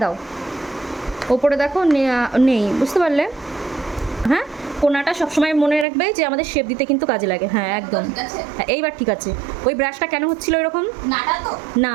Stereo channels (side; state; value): left; drops out; at 5.9 s